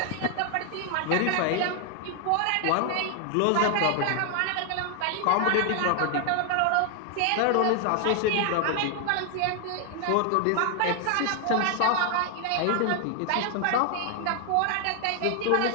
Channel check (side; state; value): both; different; correlation 0.00